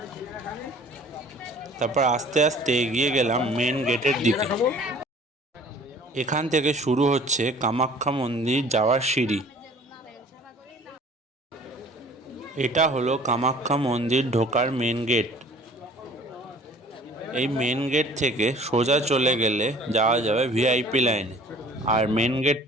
তারপর আস্তে আস্তে এগিয়ে গেলাম মেন গেটের দিকে। এখান থেকে শুরু হচ্ছে কামাখ্যা মন্দির যাওয়ার সিঁড়ি। এটা হলো কামাখ্যা মন্দির ঢোকার মেন গেট। এই মেন গেট থেকে সোজা চলে গেলে যাওয়া যাবে ভিআইপি লাইনে, আর মেন গেট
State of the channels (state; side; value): normal; both; correlation 0.50